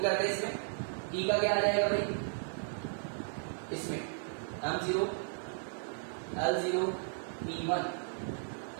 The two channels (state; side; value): silent; left; digital silence